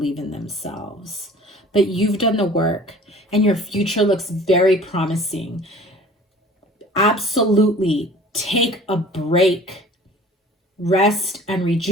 in themselves. But you've done the work and your future looks very promising. Absolutely take a break, rest and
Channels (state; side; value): normal; both; correlation 0.46